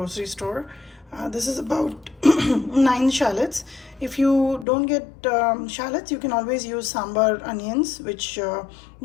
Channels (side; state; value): right; drops out; at 4.7 s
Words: store. This is about 9 shallots. If you don't get shallots, you can always use sambar onions, which